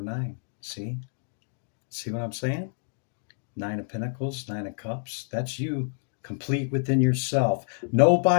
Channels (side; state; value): right; silent; digital silence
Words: 9. See? See what I'm saying? 9 of Pentacles, 9 of Cups. That's you, complete within yourself.